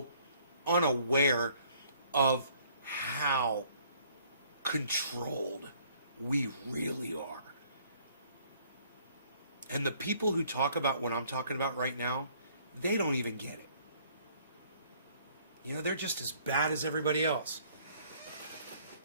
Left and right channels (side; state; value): both; inverted; correlation -0.61